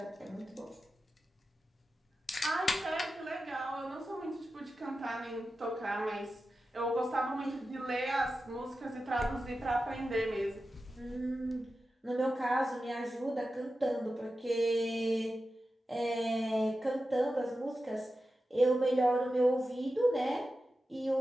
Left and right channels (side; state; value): both; normal; correlation 0.92